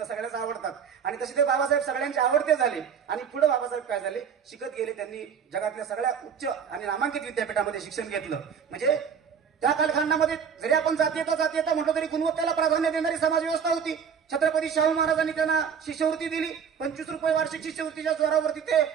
सगळ्याच आवडतात. आणि तसे ते बाबासाहेब सगळ्यांचे आवडते झाले. आणि पुढे बाबासाहेब काय झाले, शिकत गेले. त्यांनी जगातल्या सगळ्या उच्च आणि नामांकित विद्यापीठामध्ये शिक्षण घेतलं. म्हणजे त्या कालखंडामध्ये जरी आपण जातीयता म्हटलं तरी गुणवत्तेला प्राधान्य देणारी समाज व्यवस्था होती. छत्रपती शाहू महाराजांनी त्यांना शिष्यवृत्ती दिली. 25 रुपये वार्षिक शिष्यवृत्तीच्या जोरावरती ते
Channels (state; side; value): quieter; left; 7.1 dB